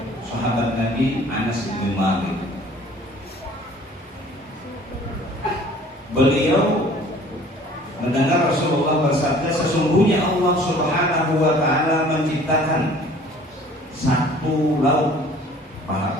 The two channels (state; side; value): normal; both; correlation 0.51